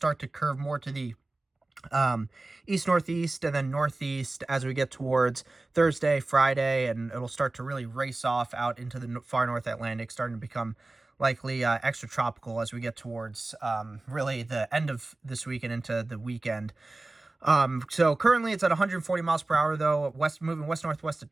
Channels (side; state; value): left; quieter; 3.0 dB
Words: to curve more to the east-northeast and then northeast as we get towards Thursday, Friday, and it'll start to really race off out into the far North Atlantic, starting to become likely extratropical as we get towards really the end of this week and into the weekend. So currently it's at 140 miles per hour, though, moving west-northwest at